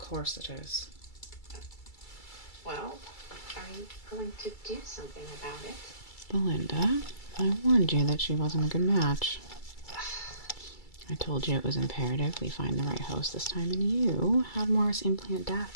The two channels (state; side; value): late; right; 2.3 ms